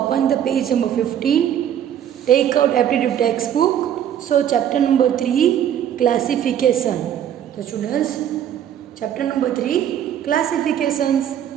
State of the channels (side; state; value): left; quieter; 10.0 dB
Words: the page number 15. Take out aptitude textbook. So chapter number 3, classification. The students, chapter number 3, classifications.